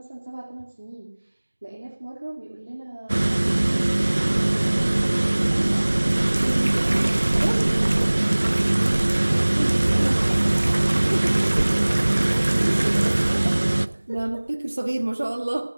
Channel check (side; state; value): both; inverted; correlation -1.00